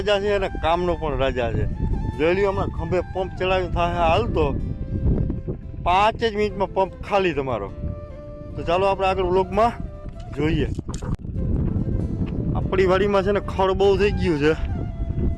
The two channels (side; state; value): both; identical; correlation 1.00